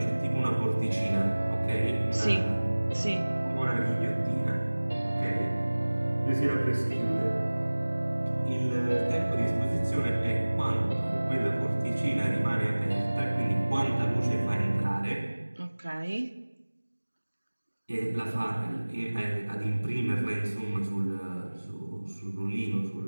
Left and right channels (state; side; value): inverted; both; correlation -1.00